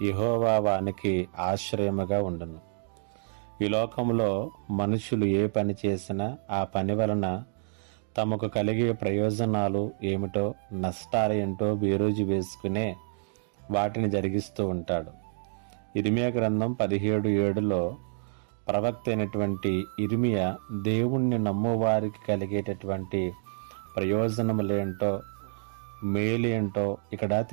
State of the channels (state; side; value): silent; left; digital silence